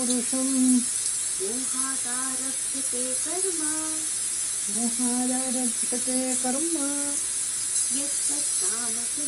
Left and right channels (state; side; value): identical; both; correlation 1.00